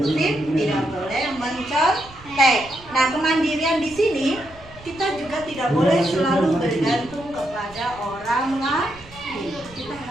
tidak boleh mencontek. Nah, kemandirian di sini kita juga tidak boleh selalu bergantung kepada orang lain. Kita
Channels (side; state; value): right; noise; rumble, 21 dB below the sound